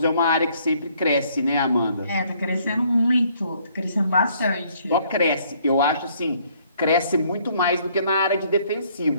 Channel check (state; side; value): inverted; both; correlation -0.64